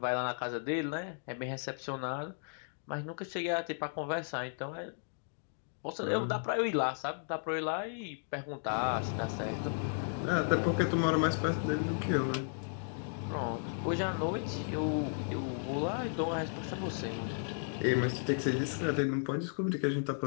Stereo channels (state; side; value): silent; right; digital silence